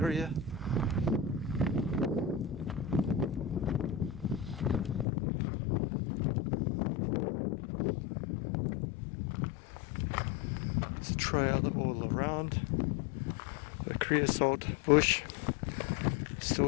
There's a trail all around. The creosote bush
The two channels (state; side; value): drops out; right; at 5.1 s